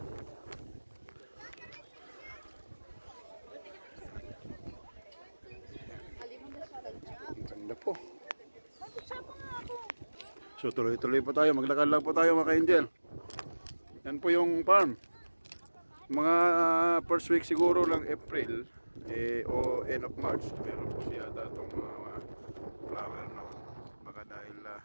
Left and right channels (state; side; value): inverted; both; correlation -1.00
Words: Ganda po. So tuloy-tuloy po tayo, maglakad lang po tayo mga ka-angel. Yan po yung farm. Mga first week siguro lang April o end of March, meron po siya datong mga flower na baka dahil